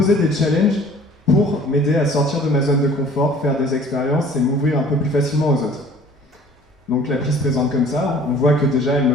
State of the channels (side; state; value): both; normal; correlation 0.50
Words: des challenges pour m'aider à sortir de ma zone de confort, faire des expériences et m'ouvrir un peu plus facilement aux autres. Donc l'appli se présente comme ça, on voit que déjà elle me